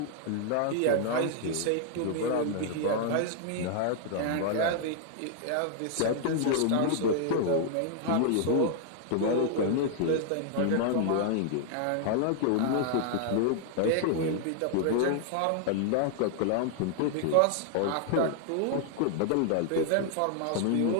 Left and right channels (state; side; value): different; both; correlation 0.00